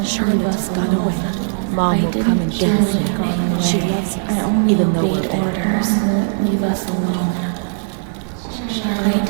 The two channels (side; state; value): left; silent; digital silence